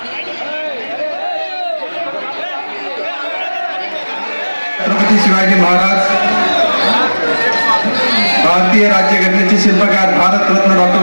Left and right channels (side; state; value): both; inverted; correlation -1.00